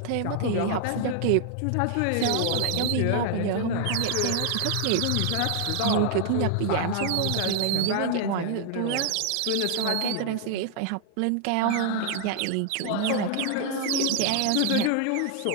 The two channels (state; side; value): different; both; correlation 0.00